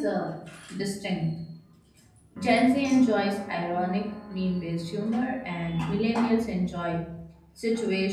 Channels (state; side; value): identical; both; correlation 1.00